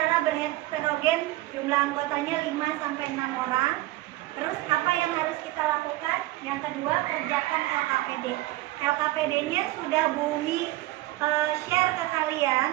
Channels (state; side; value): quieter; left; 17.9 dB